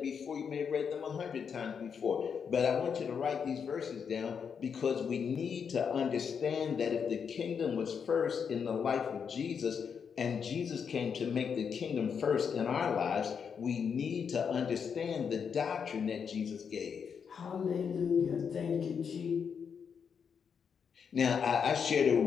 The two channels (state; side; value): quieter; right; 6.8 dB